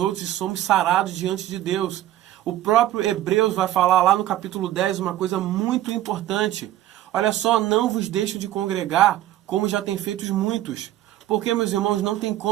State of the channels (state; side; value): quieter; left; 13.7 dB